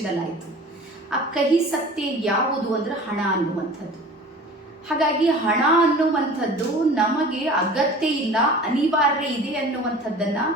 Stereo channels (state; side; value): normal; both; correlation 0.41